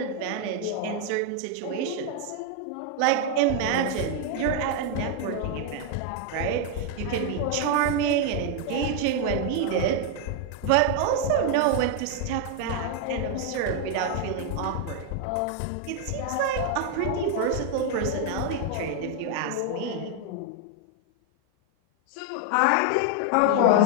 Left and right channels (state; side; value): different; both; correlation 0.00